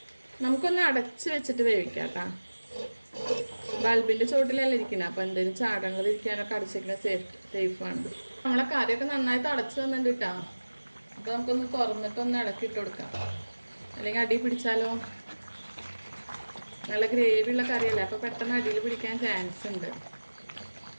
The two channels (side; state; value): both; inverted; correlation -1.00